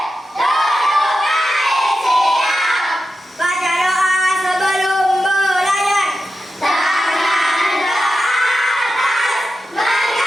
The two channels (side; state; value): both; normal; correlation 0.91